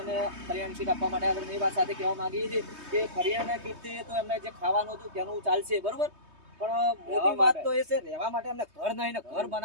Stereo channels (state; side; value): late; left; 3.2 ms